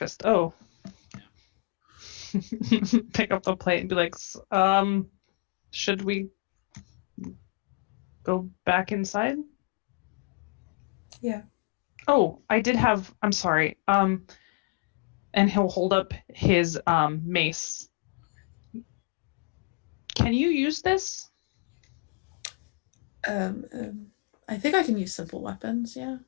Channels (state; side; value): quieter; right; 29.7 dB